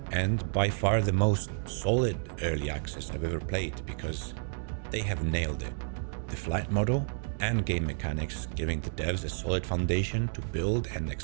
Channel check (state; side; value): silent; left; digital silence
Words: and by far the most solid early access I've ever played, because they have nailed it. The flight model and game mechanics giving the devs a solid foundation to build and